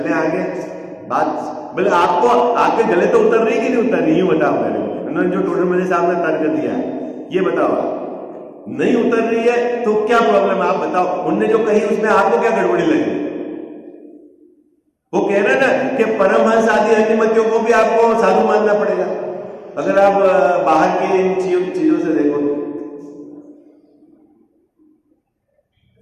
आगे बात। बोले आपको आपके गले तो उतर रही कि नहीं उतर रही, ये बताओ मेरे को। उन्होंने जो टोडरमल जी साहब ने तर्क दिया है, ये बताओ। नहीं उतर रही है तो क्या प्रॉब्लम है, आप बताओ। उनने जो कही उसमें आपको क्या गड़बड़ी लगी? वो कह रहे हैं ना कि परमहंस आदि अन्यमतियों को भी आपको साधु मानना पड़ेगा। अगर आप बाहर की इन चीजों से देखो,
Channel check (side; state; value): both; identical; correlation 1.00